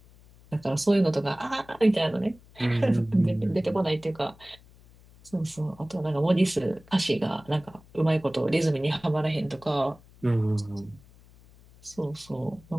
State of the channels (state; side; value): noise; left; hum, 25 dB below the sound